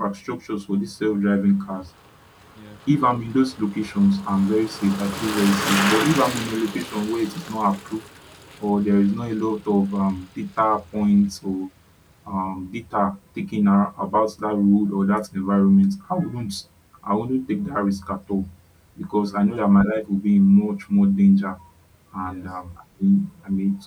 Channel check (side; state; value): both; identical; correlation 1.00